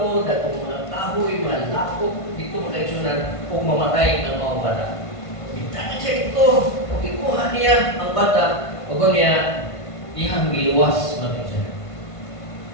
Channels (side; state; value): right; late; 1.5 ms